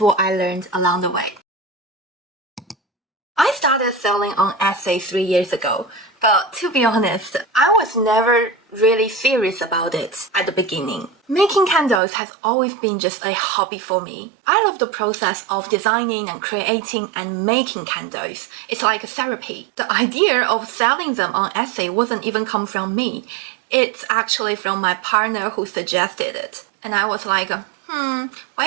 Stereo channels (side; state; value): left; drops out; at 12.0 s